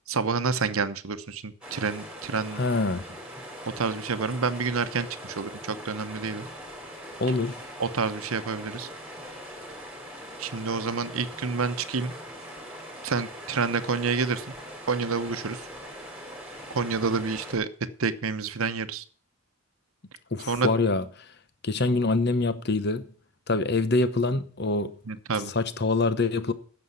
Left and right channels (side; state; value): both; normal; correlation 0.19